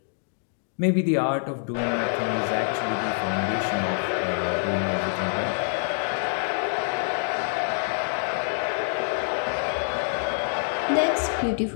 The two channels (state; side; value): silent; right; 60 dB below the other